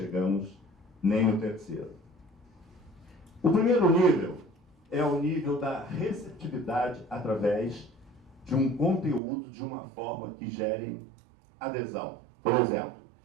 nem no terceiro. O primeiro nível é o nível da receptividade através de um conteúdo de uma forma que gere adesão. Por exemplo,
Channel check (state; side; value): drops out; left; at 9.2 s